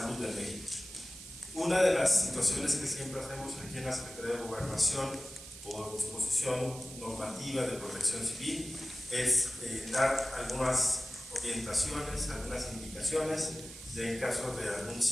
en México. Una de las situaciones que siempre hacemos aquí en la Secretaría de Gobernación, por disposición normativa de protección civil, es dar algunas orientaciones, algunas indicaciones en caso de algún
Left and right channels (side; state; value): right; noise; hiss, 14 dB below the sound